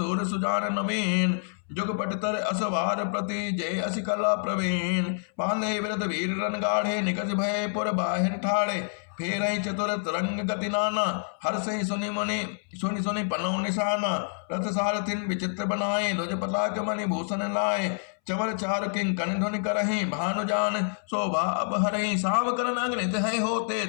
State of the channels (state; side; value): silent; right; 60 dB below the other